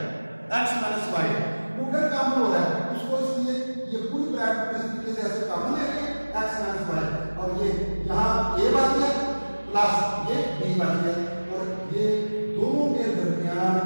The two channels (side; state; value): both; inverted; correlation -1.00